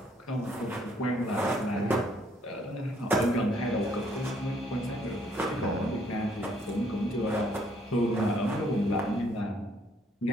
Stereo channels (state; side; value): normal; both; correlation 0.67